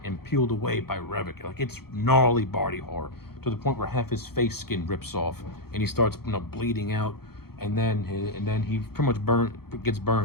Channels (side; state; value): right; late; 0.95 ms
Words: and peeled away by Revok. Like, it's gnarly body horror, to the point where half his face skin rips off and he starts bleeding out, and then he pretty much gets